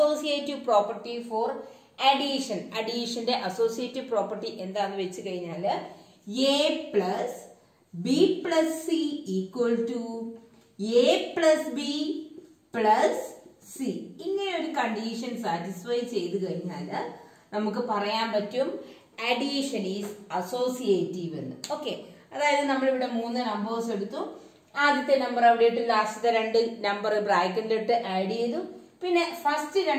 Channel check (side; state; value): both; identical; correlation 1.00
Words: പ്രോപ്പർട്ടി ഫോർ അഡീഷൻ. അഡീഷന്റെ അസോസിയേറ്റീവ് പ്രോപ്പർട്ടി എന്താന്ന് വെച്ച് കഴിഞ്ഞാല് A plus B plus C equal to A plus B plus C. ഇങ്ങനെ ഒരു കണ്ടീഷൻ സാറ്റിസ്ഫൈ ചെയ്ത് കഴിഞ്ഞാല് നമുക്ക് പറയാൻ പറ്റും അഡീഷൻ ഈസ് അസോസിയേറ്റീവ് എന്ന്. ഓക്കെ, അതായത് നമ്മളിവിടെ 3 നമ്പേഴ്സ് എടുത്തു. ആദ്യത്തെ നമ്പർ അവിടെ ഇട്ട് ലാസ്റ്റത്തെ 2 നമ്പർ ബ്രാക്കറ്റിലിട്ട് ആഡ് ചെയ്തു. പിന്നെ ഫസ്റ്റ്